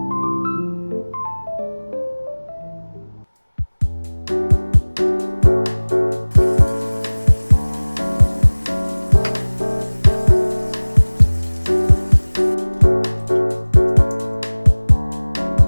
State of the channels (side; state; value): both; inverted; correlation -1.00